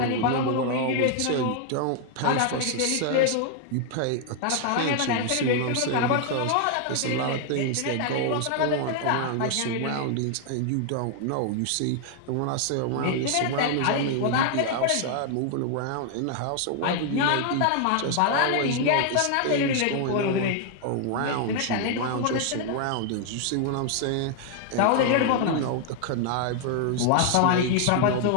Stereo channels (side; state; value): both; different; correlation 0.00